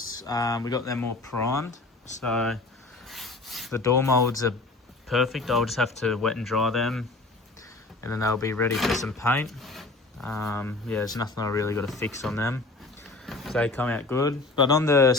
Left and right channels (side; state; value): right; quieter; 3.3 dB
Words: We got them all primed, so the door molds are perfect. I'll just have to wet and dry them and then they'll be ready for some paint. Yeah, there's nothing I really got to fix on them. They come out good. But on the